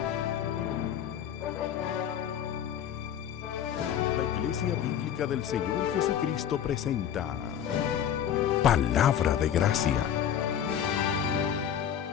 Iglesia Bíblica del Señor Jesucristo presenta Palabra de Gracia.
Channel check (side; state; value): right; quieter; 9.4 dB